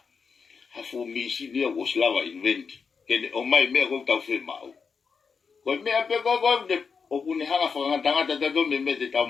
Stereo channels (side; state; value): right; quieter; 5.5 dB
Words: Hafu misi dia was lava invent. Kene o mai mea ko tau whi mau. Ko mea pe ko de o kune hanga whakatanga tatato me te tau